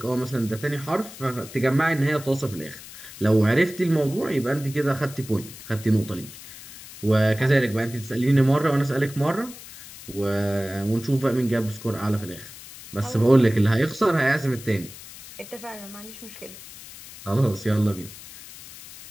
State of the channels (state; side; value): noise; left; hiss, 16 dB below the sound